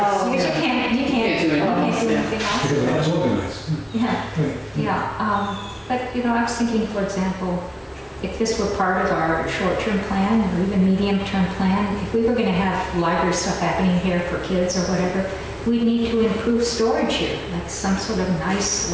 Because you can't do anything else. That's organized. Yeah, but you know, I was thinking, for example, if this were part of our short-term plan or even medium-term plan, if we were going to have library stuff happening here for kids or whatever, we'd need to improve storage here, like some sort of nice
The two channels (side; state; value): both; identical; correlation 1.00